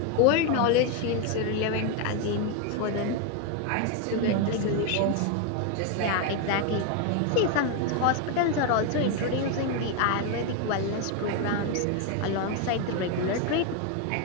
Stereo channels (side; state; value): both; different; correlation 0.01